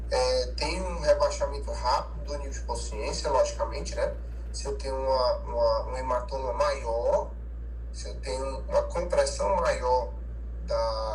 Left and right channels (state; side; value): identical; both; correlation 1.00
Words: Tem um rebaixamento rápido do nível de consciência, logicamente, né? Se eu tenho um hematoma maior, se eu tenho uma compressão maior